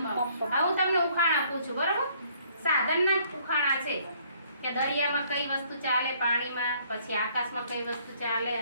હું તમને ઉખાણ આપું છું બરાબર સાધનના જ ઉખાણા છે કે દરિયામાં કઈ વસ્તુ ચાલે પાણીમાં પછી આકાશમાં કઈ વસ્તુ ચાલે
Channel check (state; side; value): inverted; both; correlation -0.62